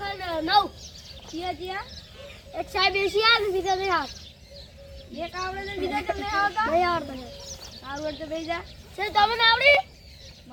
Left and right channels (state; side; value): identical; both; correlation 1.00